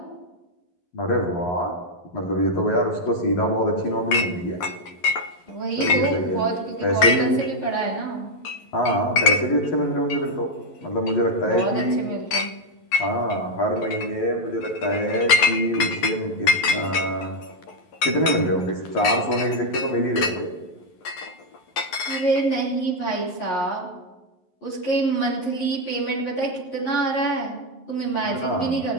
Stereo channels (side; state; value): right; late; 11 ms